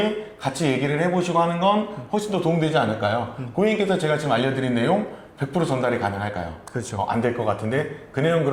같이 얘기를 해보시고 하는 건 훨씬 더 도움되지 않을까요? 고객님께서 제가 지금 알려드린 내용 100% 전달이 가능할까요? 그렇죠. 안 될 것 같은데 그 내용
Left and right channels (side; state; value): both; identical; correlation 1.00